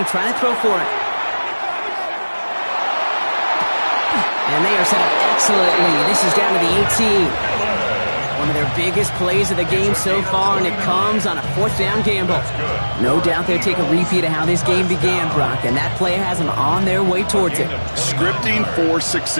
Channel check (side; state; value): both; inverted; correlation -1.00